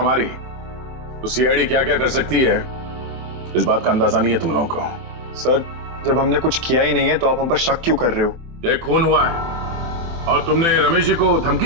तो सीआईडी क्या क्या कर सकती है, इस बात का अंदाजा नहीं है तुम लोगों को। सर, जब हमने कुछ किया ही नहीं है तो आप हम पर शक क्यों कर रहे हो? ये खून हुआ है और तुमने रमेश जी को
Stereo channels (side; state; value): left; late; 24 ms